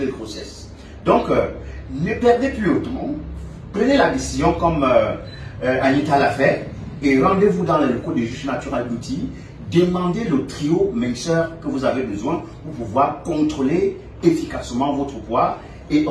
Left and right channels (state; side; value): identical; both; correlation 1.00